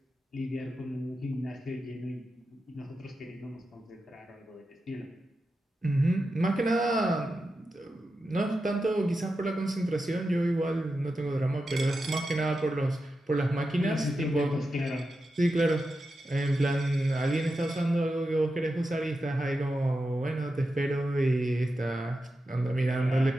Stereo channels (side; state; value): both; normal; correlation 0.90